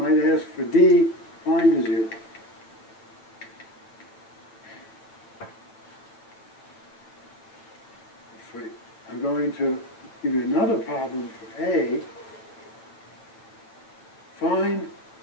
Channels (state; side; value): late; right; 8.6 ms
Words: ask for D, find a 0. I'm going to give you another problem for A. Find